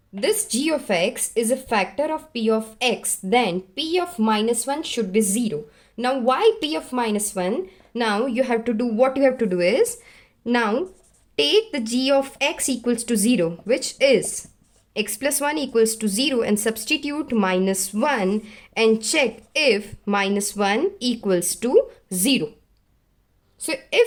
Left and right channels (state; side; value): identical; both; correlation 1.00